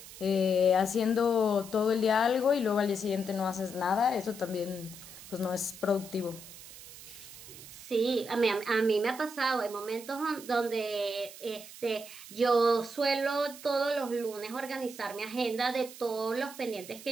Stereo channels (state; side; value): noise; right; hiss, 15 dB below the sound